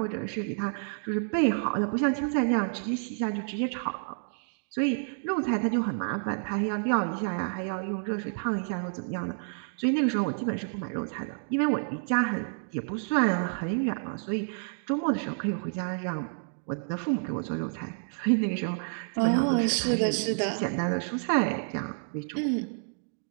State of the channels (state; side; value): silent; left; digital silence